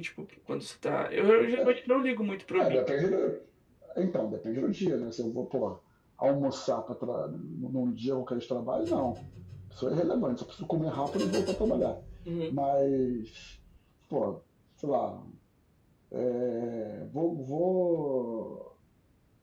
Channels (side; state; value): both; identical; correlation 1.00